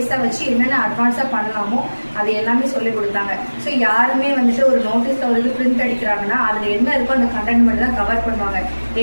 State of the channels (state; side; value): inverted; both; correlation -1.00